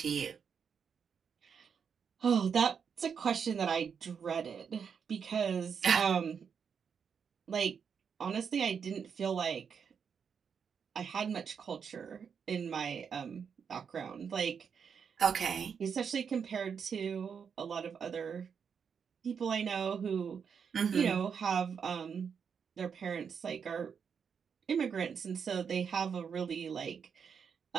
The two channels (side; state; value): left; quieter; 6.8 dB